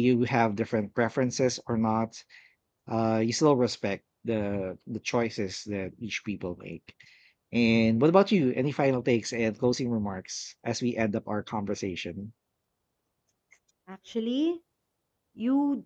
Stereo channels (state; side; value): identical; both; correlation 1.00